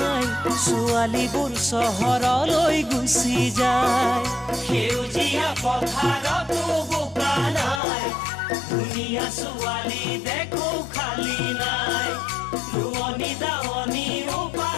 ছোৱালীবোৰ চহৰলৈ গুচি যায় সেউজীয়া পথাৰতো বোকা নাই ধুনীয়া ছোৱালী দেখো খালি নাই ৰোৱনী দাৱনীও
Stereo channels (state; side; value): drops out; right; at 7.8 s